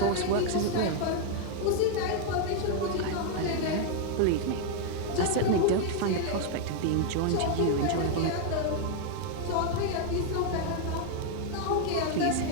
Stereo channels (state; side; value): different; both; correlation 0.00